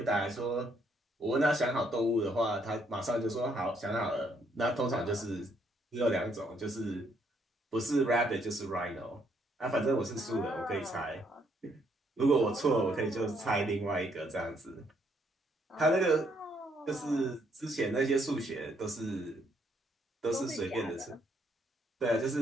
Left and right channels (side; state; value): both; normal; correlation 0.71